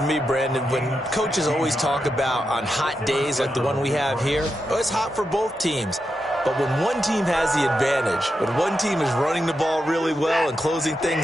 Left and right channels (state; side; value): normal; both; correlation 0.87